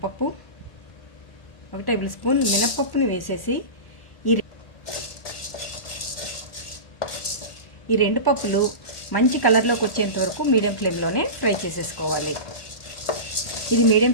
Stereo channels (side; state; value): right; late; 1.4 ms